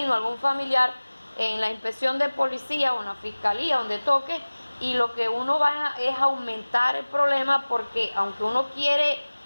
algún familiar, en la inspección de policía o en la fiscalía, donde toque, y lo que uno va es aumentar el problema, porque aunque uno quiere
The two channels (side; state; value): both; inverted; correlation -1.00